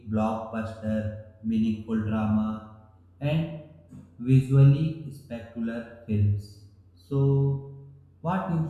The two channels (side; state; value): both; identical; correlation 1.00